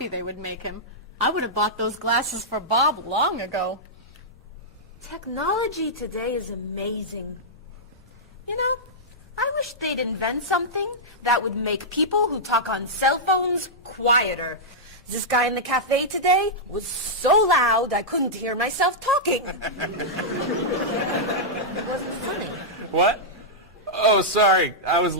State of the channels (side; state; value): both; normal; correlation -0.10